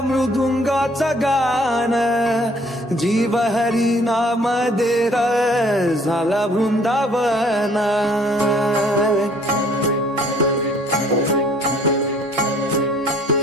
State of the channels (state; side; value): normal; both; correlation 0.58